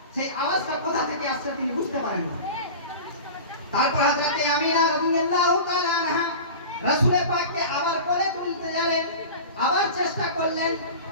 সেই আওয়াজটা কোথা থেকে আসছে তিনি বুঝতে পারেন না। তারপর হযরত আমিনা রাদিয়াল্লাহু তাআলা আনহা রাসূল পাককে আবার কোলে তুলতে গেলেন, আবার চেষ্টা করলেন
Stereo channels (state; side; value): inverted; both; correlation -0.33